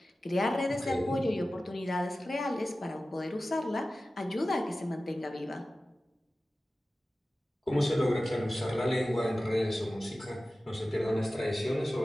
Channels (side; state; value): both; normal; correlation 0.95